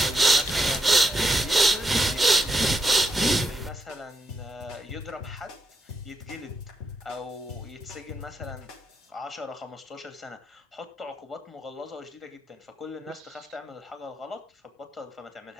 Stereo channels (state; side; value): normal; both; correlation 0.81